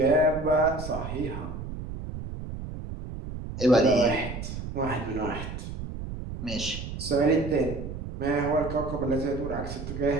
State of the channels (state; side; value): noise; right; rumble, 8 dB below the sound